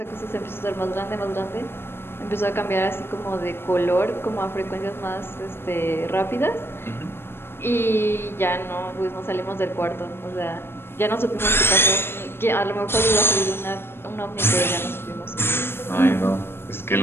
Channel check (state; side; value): late; right; 0.11 ms